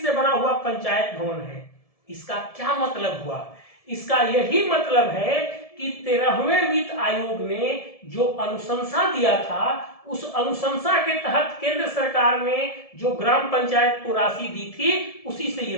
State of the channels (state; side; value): late; right; 1.7 ms